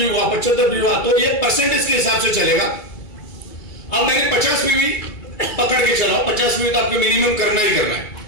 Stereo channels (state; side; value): late; right; 2.3 ms